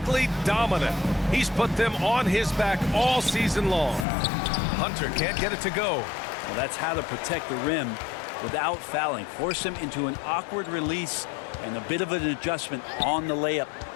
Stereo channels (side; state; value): right; drops out; at 4.0 s